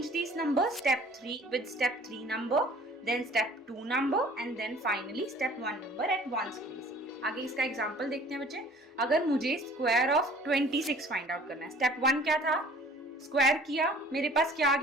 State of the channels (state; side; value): normal; both; correlation 0.51